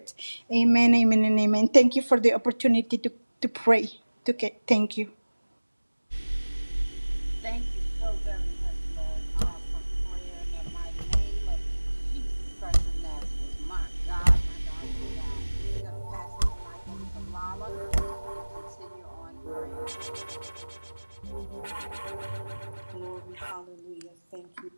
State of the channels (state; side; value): inverted; both; correlation -1.00